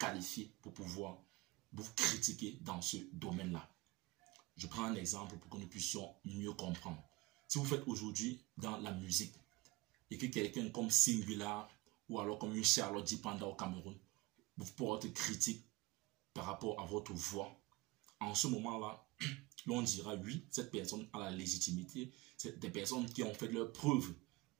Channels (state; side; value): quieter; left; 22.5 dB